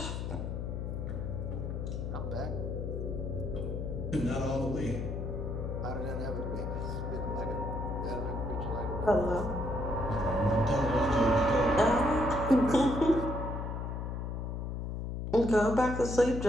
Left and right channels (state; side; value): noise; left; hum, 4 dB below the sound